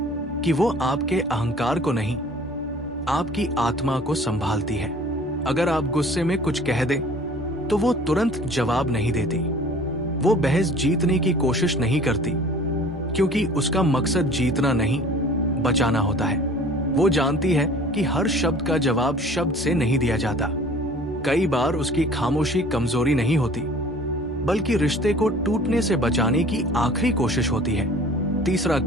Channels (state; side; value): normal; both; correlation 0.47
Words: कि वो आपके अहंकार को नहीं, आपकी आत्मा को संभालती है। अगर आप गुस्से में कुछ कह दें तो वो तुरंत जवाब नहीं देती। वो बहस जीतने की कोशिश नहीं करती, क्योंकि उसका मकसद जीतना नहीं, बचाना होता है। वो जानती है कि हर शब्द का जवाब शब्द से नहीं दिया जाता। कई बार उसकी खामोशी कमजोरी नहीं होती, बल्कि रिश्ते को टूटने से बचाने की आखिरी कोशिश होती है। तीसरा